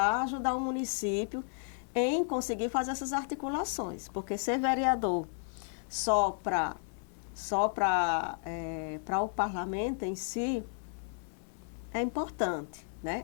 ajudar o município em conseguir fazer essas articulações, porque ser vereador só para o parlamento em si é importante, né?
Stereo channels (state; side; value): silent; right; 56 dB below the other